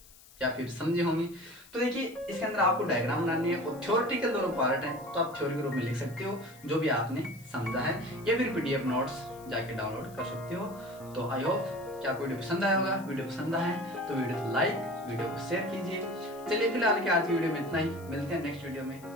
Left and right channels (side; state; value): left; noise; hiss, 23 dB below the sound